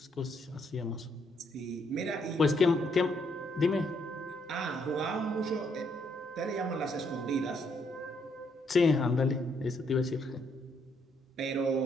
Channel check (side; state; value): both; normal; correlation 0.72